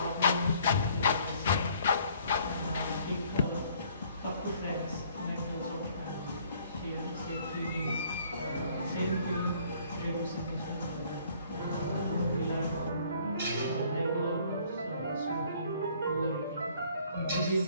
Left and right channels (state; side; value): inverted; both; correlation -0.59